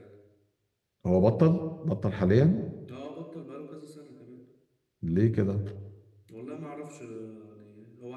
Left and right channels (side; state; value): both; identical; correlation 1.00